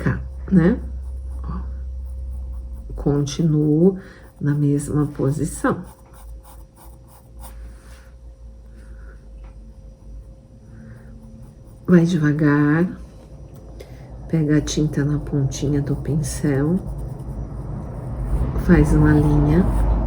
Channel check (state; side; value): identical; both; correlation 1.00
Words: né? Ó. Continuo na mesma posição. Vai devagar, pega a tinta na pontinha do pincel, faz uma linha.